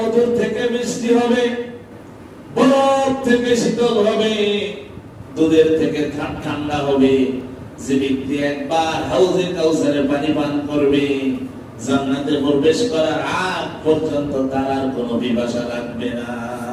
থেকে মিষ্টি হবে, বরফ থেকে শীতল হবে, দুধের থেকে ঠান্ডা হবে। যে ব্যক্তি একবার হাউজে কাউসারের পানি পান করবে, জান্নাতে প্রবেশ করার আগ পর্যন্ত তার আর কোনো পিপাসা লাগবে না।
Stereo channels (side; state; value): both; identical; correlation 1.00